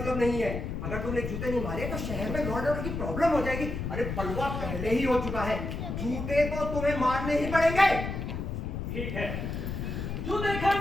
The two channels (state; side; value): noise; left; rumble, 4 dB below the sound